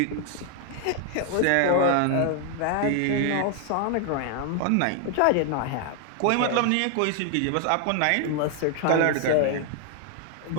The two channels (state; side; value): different; both; correlation 0.00